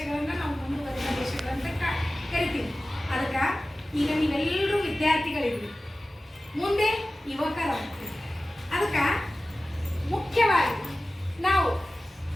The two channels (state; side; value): normal; both; correlation 0.96